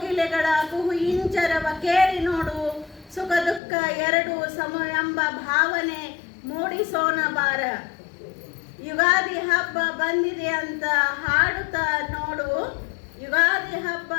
ಕುಹು ಇಂಚರವ ಕೇಳಿ ನೋಡು. ಸುಖ ದುಃಖ ಎರಡು ಸಮ ಎಂಬ ಭಾವನೆ ಮೂಡಿಸೋಣ ಬಾರ. ಯುಗಾದಿ ಹಬ್ಬ ಬಂದಿದೆ ಅಂತ ಹಾಡುತ್ತಾ ನೋಡು, ಯುಗಾದಿ ಹಬ್ಬ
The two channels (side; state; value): right; drops out; at 3.6 s